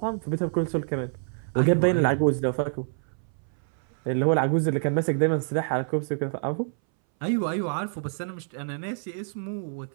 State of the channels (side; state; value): left; silent; 60 dB below the other